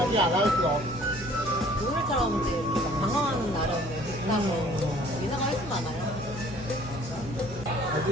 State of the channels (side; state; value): both; normal; correlation 0.54